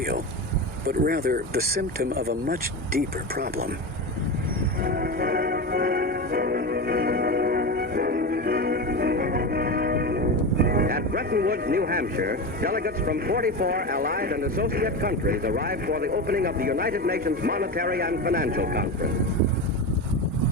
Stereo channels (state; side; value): normal; both; correlation 0.21